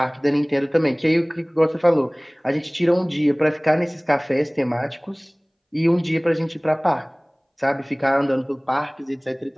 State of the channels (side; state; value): both; identical; correlation 1.00